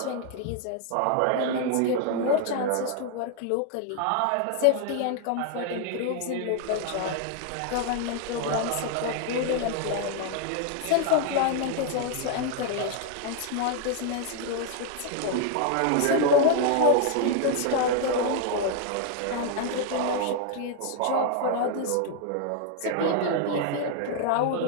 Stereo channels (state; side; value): different; both; correlation 0.00